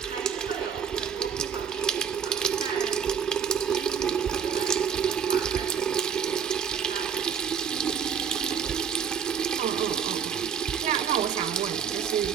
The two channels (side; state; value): left; quieter; 7.5 dB